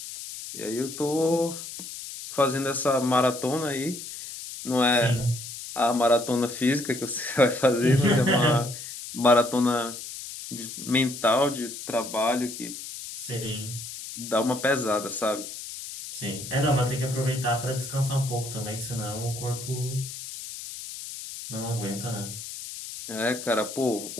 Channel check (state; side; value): noise; left; hiss, 10 dB below the sound